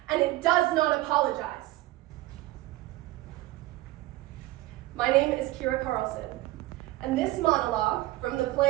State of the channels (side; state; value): left; quieter; 17.2 dB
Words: and it does not apologize. My name is Kira Carlson, and this monologue from the